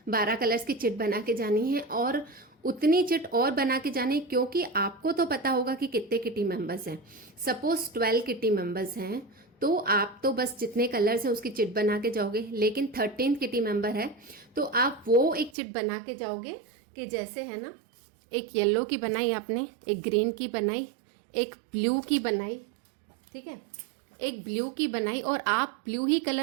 12 कलर्स की चिट बना के जानी है, और उतनी चिट और बना के जानी, क्योंकि आपको तो पता होगा कि कितने किटी मेंबर्स हैं। सपोज 12 किटी मेंबर्स हैं तो आप तो बस जितने कलर्स हैं उसकी चिट बना के जाओगे, लेकिन 13th किटी मेंबर है तो आप वो एक चिट बना के जाओगे कि जैसे है ना, एक येलो की बनाई आपने, एक ग्रीन की बनाई, एक ब्लू की बनाई, ठीक है, एक ब्लू की बनाई, और आप ब्लू ही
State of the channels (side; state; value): left; drops out; at 15.5 s